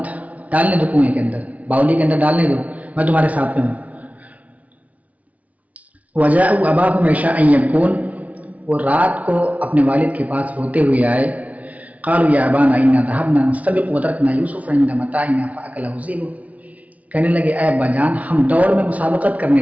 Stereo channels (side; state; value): left; late; 0.069 ms